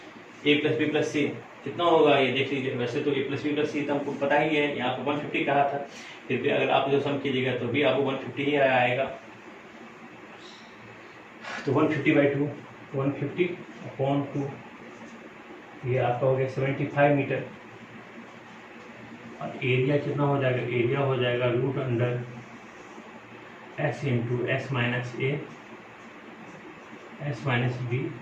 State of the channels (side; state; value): both; identical; correlation 1.00